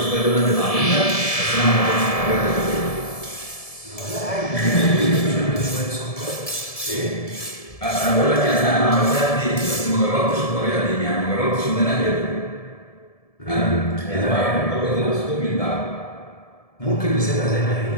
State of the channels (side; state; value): right; late; 1.7 ms